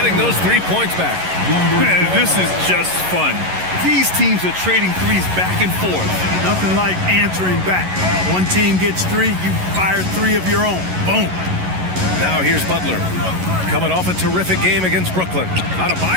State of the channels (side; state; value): left; late; 11 ms